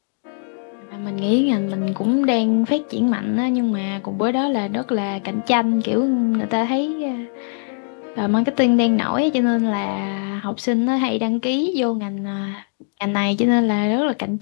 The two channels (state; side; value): silent; right; digital silence